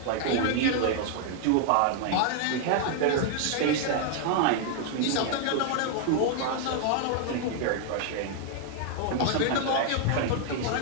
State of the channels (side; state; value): both; different; correlation 0.00